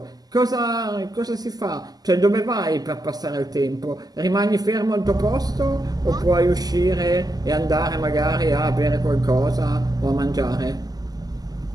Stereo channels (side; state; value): left; late; 0.19 ms